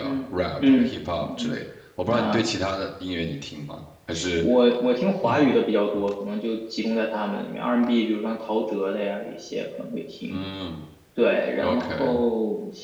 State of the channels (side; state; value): both; identical; correlation 1.00